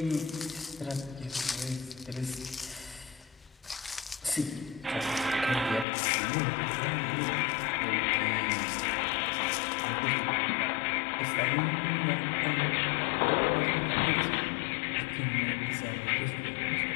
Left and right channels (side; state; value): right; drops out; at 5.9 s